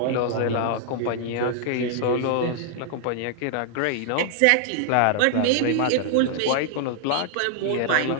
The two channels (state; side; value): different; both; correlation 0.00